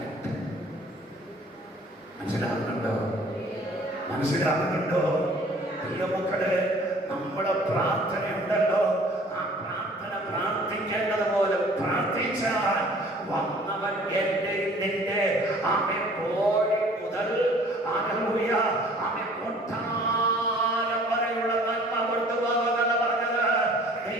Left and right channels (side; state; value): both; normal; correlation 0.52